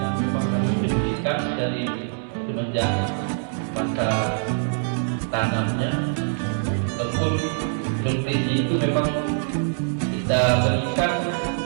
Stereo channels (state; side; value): silent; left; 63 dB below the other